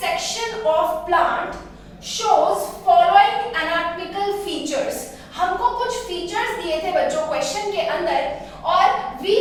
section of plant shows following anatomical features। हमको कुछ फीचर्स दिए थे बच्चों क्वेश्चन के अंदर, और we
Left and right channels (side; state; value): both; identical; correlation 1.00